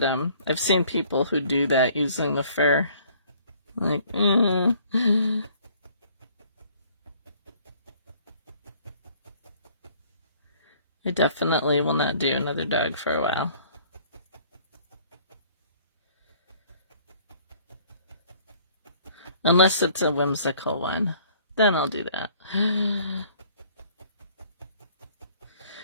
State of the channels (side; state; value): both; inverted; correlation -0.57